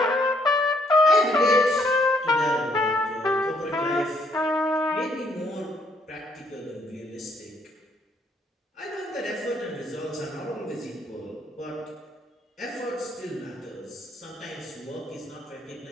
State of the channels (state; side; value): normal; both; correlation 0.69